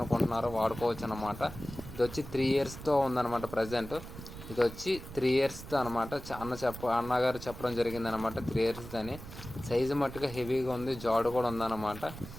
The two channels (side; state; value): right; noise; rumble, 13 dB below the sound